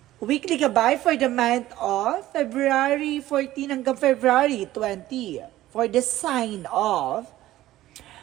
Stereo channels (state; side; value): quieter; left; 15.0 dB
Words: weekly gabay for the month of February 14 hanggang February 20 for the sign of